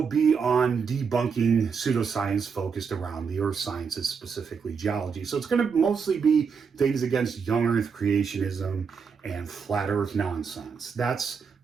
be on debunking pseudoscience focused around the earth sciences, specifically geology. So it's going to mostly be things against young earth creationism and flat earth nonsense. That's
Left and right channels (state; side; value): quieter; left; 5.9 dB